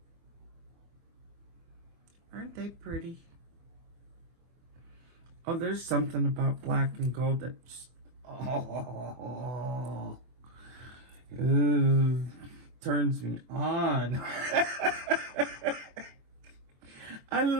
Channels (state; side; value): late; left; 24 ms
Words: Aren't they pretty? Oh, there's something about black and gold that just... Oh, turns me on. I